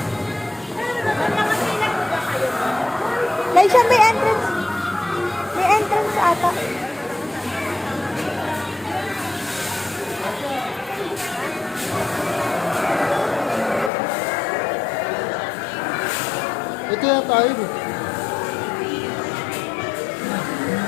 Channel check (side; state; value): right; drops out; at 13.9 s